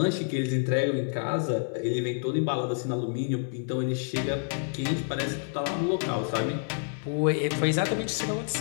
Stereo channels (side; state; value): right; silent; 59 dB below the other